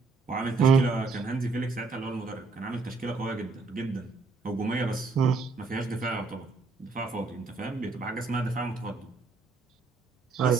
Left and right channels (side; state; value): left; quieter; 4.3 dB